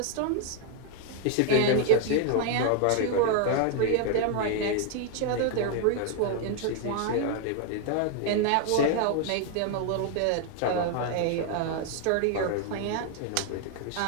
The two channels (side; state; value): both; different; correlation 0.00